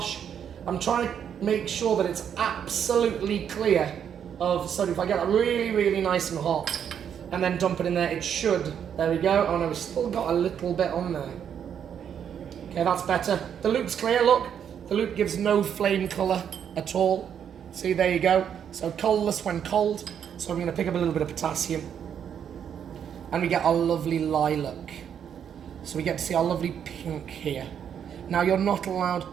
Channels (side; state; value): left; quieter; 8.4 dB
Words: I'm trying to make sure that it's absolutely clear of sodium. If I get that really, really nice and hot, and then dump it in there. It should. There we go. Oh no, we've still got a little bit on there. Okay, that's better. The loop's clear, look. The loop gives no flame colour at all. See, there you go. So colourless when cold. So I'm going to pick up a little bit of potassium. And we get our lovely lilac. So we get to see our lovely pink here. Now, you're not allowed